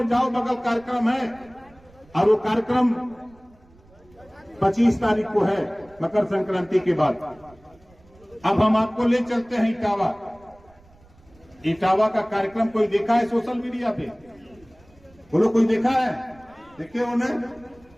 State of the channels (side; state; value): right; noise; rumble, 28 dB below the sound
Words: जाओ, बगल कार्यक्रम है, और वो कार्यक्रम 25 तारीख को है, मकर संक्रांति के बाद। अब हम आपको ले चलते हैं इटावा। इटावा का कार्यक्रम कोई देखा है सोशल मीडिया पे? बोलो, कोई देखा है? देखिए उन्हें